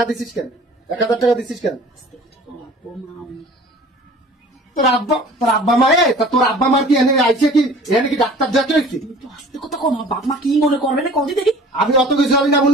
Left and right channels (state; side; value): normal; both; correlation 0.46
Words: দিছিস কেন? 1000 টাকা দিছিস কেন? তোর আব্বা মায়ে তোর আব্বা মার কি এনে আইছে কি? এনে কি ডাক্তার যাচ্ছে? কথা কম, বাপ মা কি মনে করবে না? কদি দেখি আমি অত কিছু আমি না